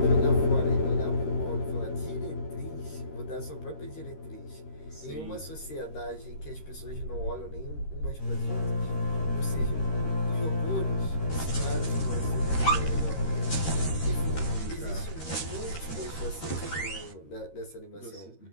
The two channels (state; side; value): late; right; 13 ms